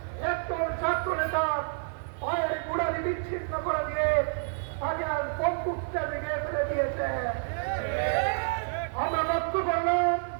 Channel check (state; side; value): silent; left; 59 dB below the other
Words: একজন ছাত্র নেতা পায়ের গোড়ালি বিচ্ছিন্ন করে দিয়ে তাকে আর বন্দুকটা ভেঙে ফেলে দিয়েছে। আমরা লক্ষ্য করলাম